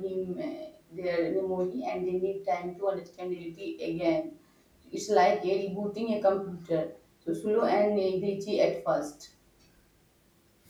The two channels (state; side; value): identical; both; correlation 1.00